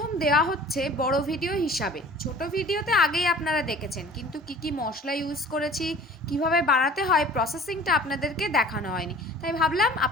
দেওয়া হচ্ছে বড় ভিডিও হিসাবে। ছোট ভিডিওতে আগেই আপনারা দেখেছেন, কিন্তু কি কি মশলা ইউজ করেছি, কিভাবে বানাতে হয়, প্রসেসিংটা আপনাদেরকে দেখানো হয়নি, তাই ভাবলাম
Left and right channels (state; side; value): normal; both; correlation 0.46